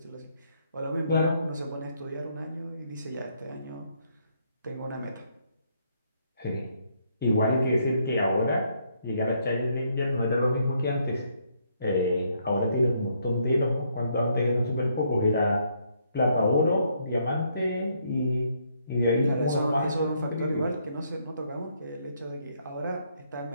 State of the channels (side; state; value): both; inverted; correlation -0.71